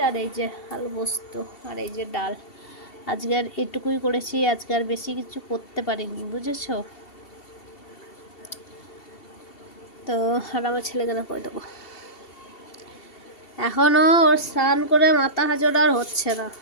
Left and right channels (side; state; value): right; late; 2.7 ms